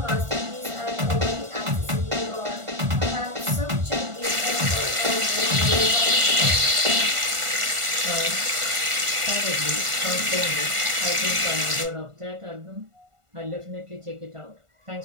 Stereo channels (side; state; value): left; late; 1.5 ms